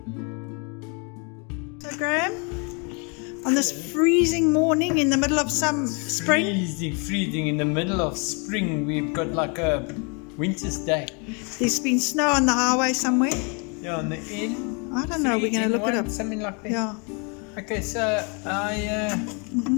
So Graham, on this freezing morning in the middle of some spring. Freezing in the middle of spring. We've got like a winter's day. There's been snow on the highway somewhere. Yeah, on the end. I don't know, we're going to look it up. Something like that. Yeah. Okay, so I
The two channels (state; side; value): quieter; right; 34.7 dB